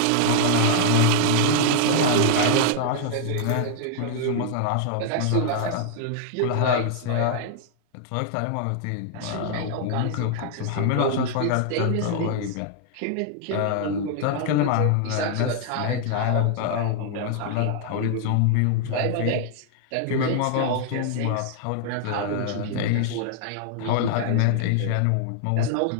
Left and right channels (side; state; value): both; different; correlation 0.00